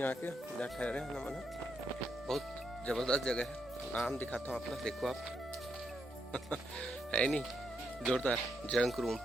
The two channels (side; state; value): both; normal; correlation 0.80